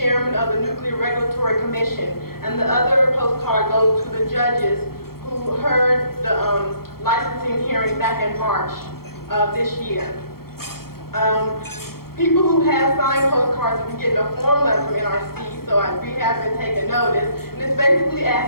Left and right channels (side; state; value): right; late; 0.94 ms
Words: of the Nuclear Regulatory Commission. And the other postcard goes to the judges who heard the licensing hearing back in March of this year. People who have signed postcards have been getting a form letter from NRC, so we have been taking notice. And it's basically